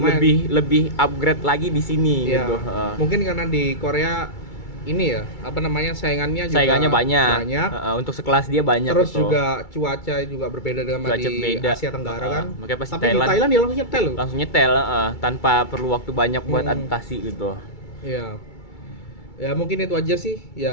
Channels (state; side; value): late; right; 2.3 ms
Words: lebih upgrade lagi di sini gitu. Mungkin karena di Korea ini ya, saingannya banyak. Untuk sekelas dia banyak. Terus gitu. juga cuaca juga berbeda dengan di Asia Tenggara kan. Makanya pasti tapi di Thailand dia langsung nyetel tanpa perlu waktu banyak buat adaptasi gitu. Iya. Ya mungkin itu aja sih.